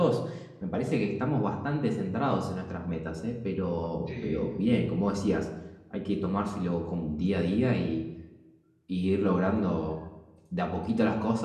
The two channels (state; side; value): identical; both; correlation 1.00